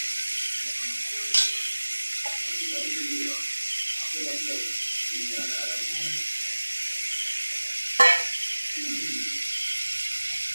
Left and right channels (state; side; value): inverted; both; correlation -1.00